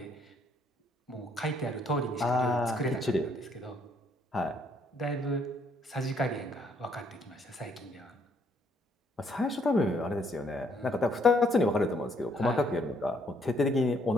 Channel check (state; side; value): normal; both; correlation 0.68